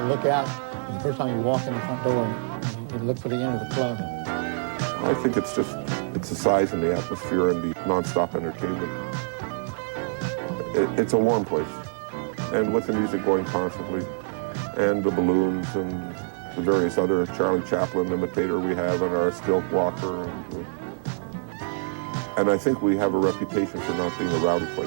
look out. And the first time you walk in the front door and you look for the end of the club. I think it's the size and the atmosphere and the non-stop entertainment. It's a warm place. And with the music going constantly, and the balloons and the various other Charlie Chaplin imitator we have and our stilt walker. And I think we have a reputation for not being a rowdy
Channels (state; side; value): silent; left; digital silence